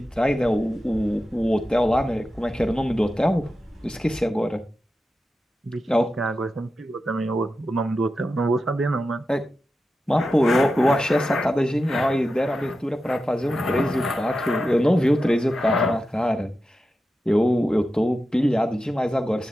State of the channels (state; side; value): normal; both; correlation 0.91